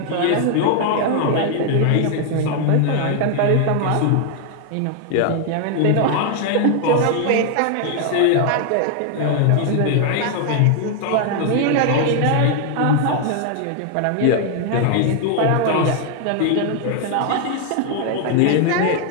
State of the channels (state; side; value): different; both; correlation 0.00